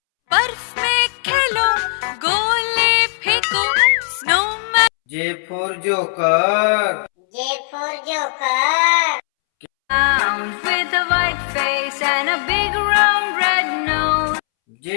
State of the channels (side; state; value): right; silent; 67 dB below the other